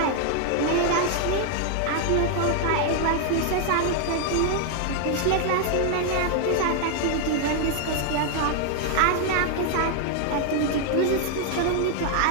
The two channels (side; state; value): both; different; correlation 0.00